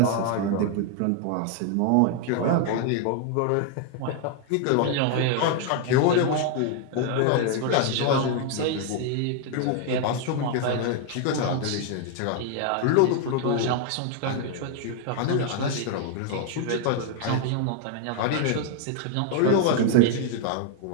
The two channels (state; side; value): different; both; correlation 0.00